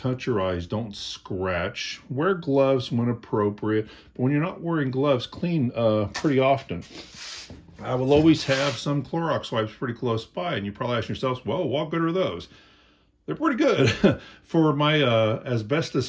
your eyes, don't scratch. Wear gloves when appropriate. But when you're not wearing gloves, clean pretty often. I will always have some Clorox wipes pretty close by. And you probably ask yourselves, well, what good are those? They're pretty good. For my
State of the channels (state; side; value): identical; both; correlation 1.00